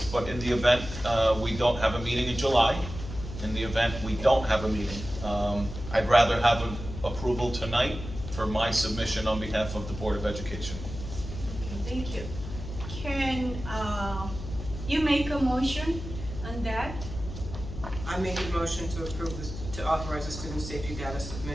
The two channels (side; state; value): left; noise; hum, 9 dB below the sound